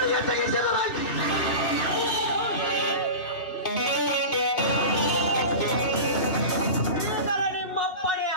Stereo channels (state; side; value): late; right; 2.7 ms